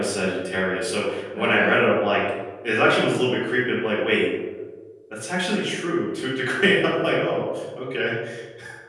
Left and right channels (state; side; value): identical; both; correlation 1.00